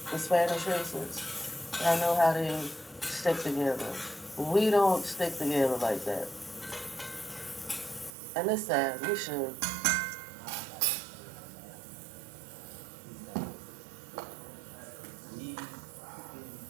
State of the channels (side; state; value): left; drops out; at 8.1 s